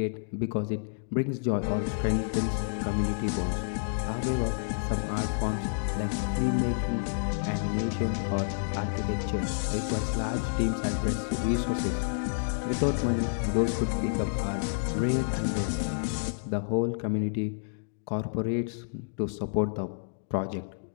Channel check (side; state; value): right; silent; digital silence